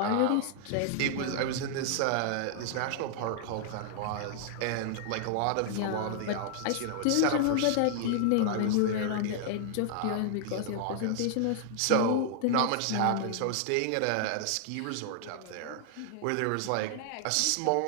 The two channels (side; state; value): both; different; correlation 0.00